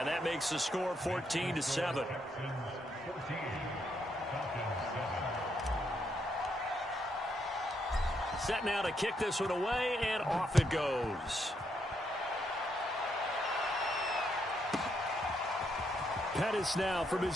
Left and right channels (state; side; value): normal; both; correlation 0.77